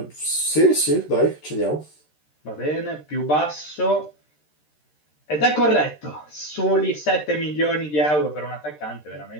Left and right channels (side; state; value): right; late; 13 ms